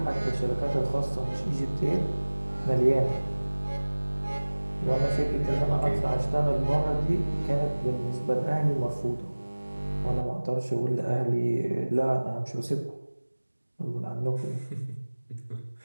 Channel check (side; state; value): both; inverted; correlation -1.00